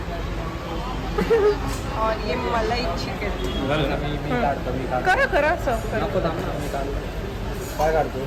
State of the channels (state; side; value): identical; both; correlation 1.00